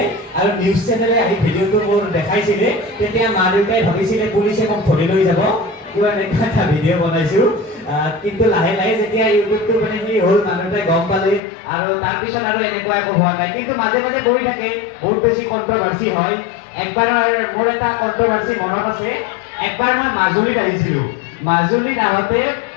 আৰু নিউজ চেনেলে আহি ভিডিঅ'টো মোৰ দেখাইছিলে তেতিয়া মা দেউতাই ভাবিছিলে পুলিচে মোক ধৰি লৈ যাব কিবা এনেকুৱা এটা ভিডিঅ' বনাইছোঁ কিন্তু লাহে লাহে যেতিয়া ইউটিউবটো মানে কি হ'ল মানুহ দেউতাই গম পালে আৰু তাৰপিছত আৰু এনেকুৱা একো হোৱা নাই কিন্তু মাজে মাজে পৰি থাকে বহুত বেছি কণ্ট্ৰভাৰ্চি হয় একবাৰ মোৰ এটা কণ্ট্ৰভাৰ্চি মনত আছে একবাৰ মই মাজুলীত আহিছিলোঁ মাজুলীত আহোঁতে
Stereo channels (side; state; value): right; drops out; at 11.4 s